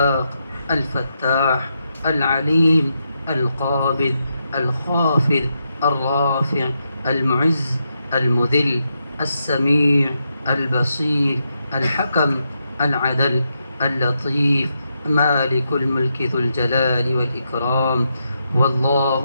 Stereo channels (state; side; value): inverted; both; correlation -0.83